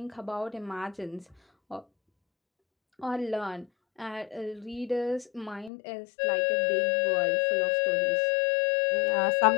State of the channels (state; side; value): drops out; right; at 5.7 s